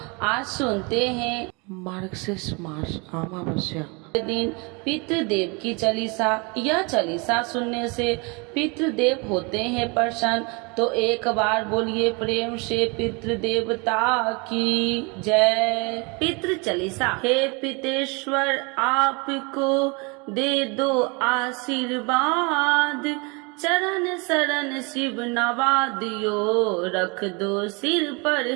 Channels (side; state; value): left; quieter; 30.2 dB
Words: आज सुनते हैं मार्गशीर्ष मास अमावस्या दिन पितृदेव की चालीसा। यह चालीसा सुनने से पितृदेव होते हैं प्रसन्न। तो एक बार बोलिए प्रेम से पितृदेवता की जय। पितृ चालीसा। हे पितेश्वर आपको दे दो आशीर्वाद, चरण शरण शिव नवा दियो, रख दो सिर पर